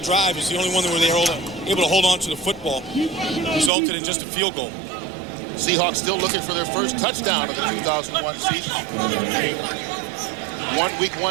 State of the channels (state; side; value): drops out; left; at 3.7 s